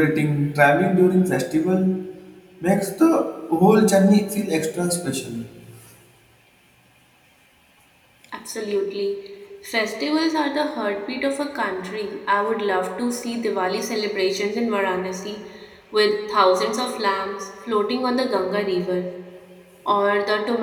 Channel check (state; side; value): identical; both; correlation 1.00